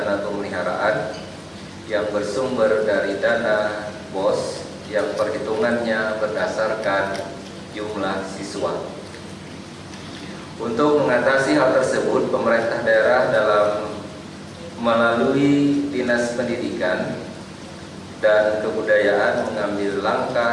pemeliharaan yang bersumber dari dana BOS yang perhitungannya berdasarkan jumlah siswa. Untuk mengatasi hal tersebut, pemerintah daerah melalui Dinas Pendidikan dan Kebudayaan mengambil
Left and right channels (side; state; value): both; identical; correlation 1.00